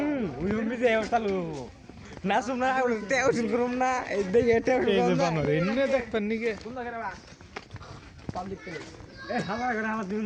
ওই উম্মি যে চালু না শুননা তেও শুন করুম না এই দেখে তেও এই যে বানর এনে দেখবেন নিকে পাবলিক প্লেস এ হালা করে হালা দিন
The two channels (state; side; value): identical; both; correlation 1.00